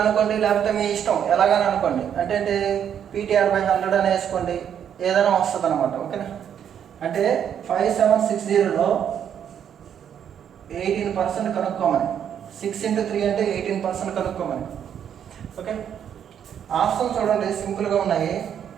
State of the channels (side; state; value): left; quieter; 8.9 dB